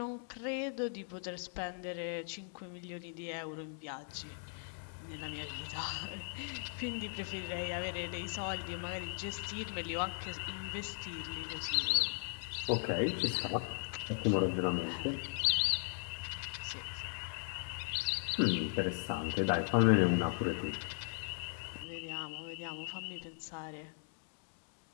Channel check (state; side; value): silent; right; 52 dB below the other